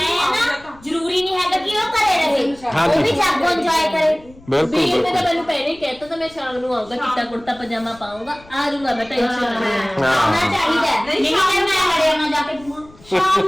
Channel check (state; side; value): noise; left; rumble, 24 dB below the sound